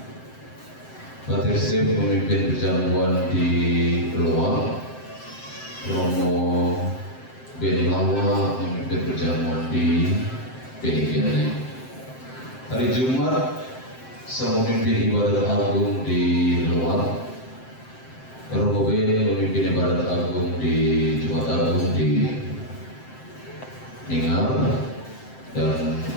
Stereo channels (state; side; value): late; right; 7.7 ms